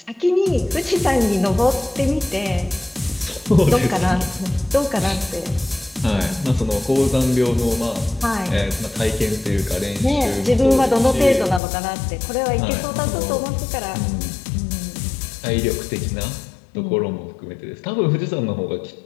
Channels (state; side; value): drops out; right; at 11.6 s